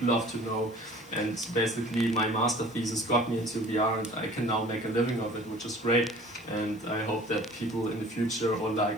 love to know. And basically, my master thesis got me into VR, and I can now make a living of it, which is great. And I hope that people in the future, or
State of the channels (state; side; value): noise; left; hiss, 28 dB below the sound